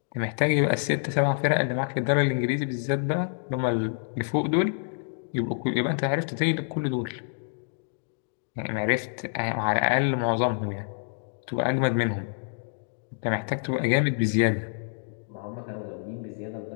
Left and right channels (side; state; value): right; silent; digital silence